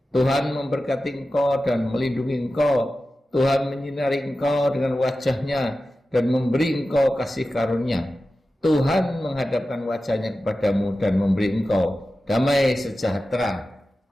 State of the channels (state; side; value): normal; both; correlation 0.94